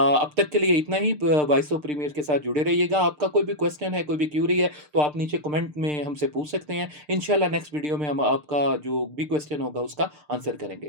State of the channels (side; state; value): left; late; 6.7 ms